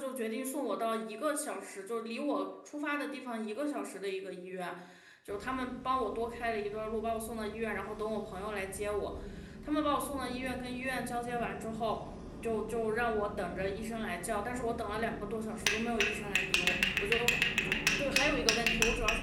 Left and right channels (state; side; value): identical; both; correlation 1.00